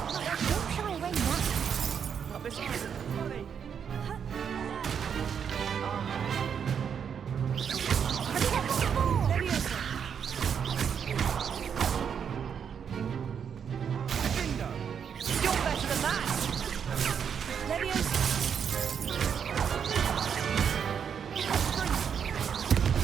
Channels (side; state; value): left; quieter; 7.5 dB